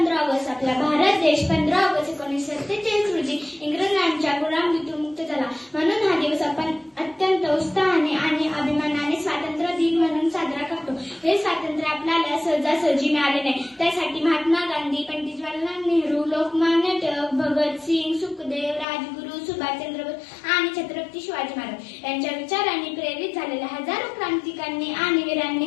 ऑगस्ट. आपला भारत देश 15 ऑगस्ट 1947 रोजी इंग्रजांच्या गुलामीतून मुक्त झाला. म्हणून हा दिवस आपण अत्यंत उत्साहाने आणि अभिमानाने स्वातंत्र्य दिन म्हणून साजरा करतो. हे स्वातंत्र्य आपल्याला सहजासहजी मिळाले नाही. त्यासाठी महात्मा गांधी, पंडित जवाहरलाल नेहरू, लोकमान्य टिळक, भगतसिंग, सुखदेव, राजगुरू, सुभाषचंद्र बोस आणि छत्रपती शिवाजी महाराज यांच्या विचारांनी प्रेरित झालेल्या हजारो क्रांतिकारकांनी आणि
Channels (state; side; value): drops out; right; at 18.9 s